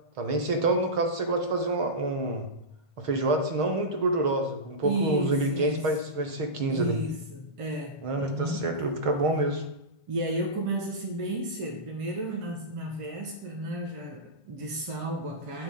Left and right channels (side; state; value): left; late; 1.5 ms